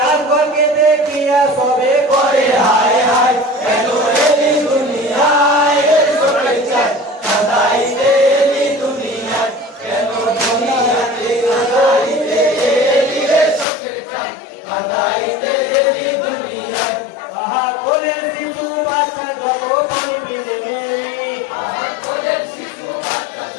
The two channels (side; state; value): right; drops out; at 13.7 s